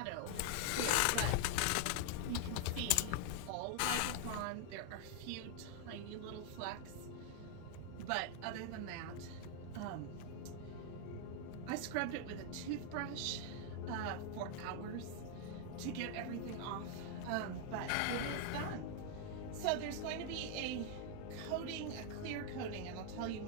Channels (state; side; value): different; both; correlation 0.00